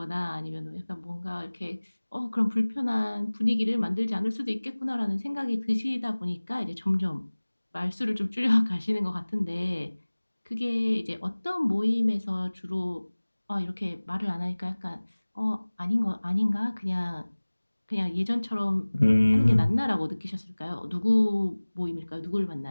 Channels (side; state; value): both; inverted; correlation -1.00